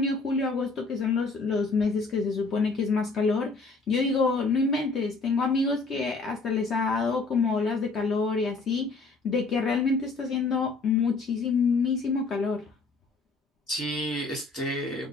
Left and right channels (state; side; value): quieter; right; 3.8 dB